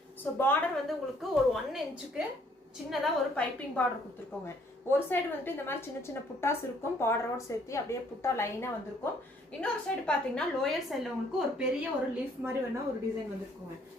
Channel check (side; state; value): both; normal; correlation 0.64